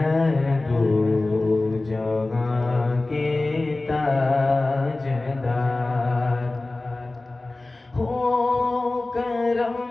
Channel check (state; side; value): quieter; right; 3.0 dB